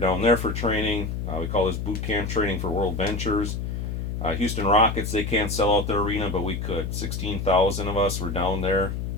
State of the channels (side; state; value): left; noise; hum, 3 dB below the sound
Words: there for training. We call this boot camp training for World Ventures. Houston Rockets, they can't sell out their arena, but we could. 16,000 of us were down there,